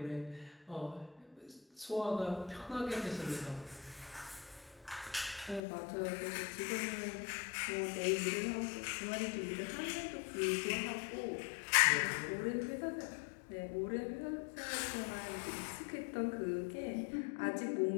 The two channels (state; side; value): drops out; right; at 5.6 s